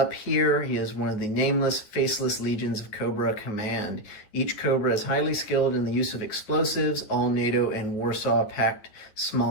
here, he is one of the nameless, faceless legions of Cobra Command. Each Cobra is highly skilled in the use of explosives, all NATO and Warsaw Pact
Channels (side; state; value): right; late; 9.7 ms